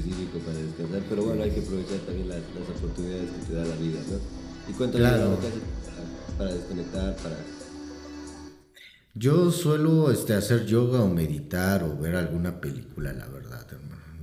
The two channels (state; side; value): identical; both; correlation 1.00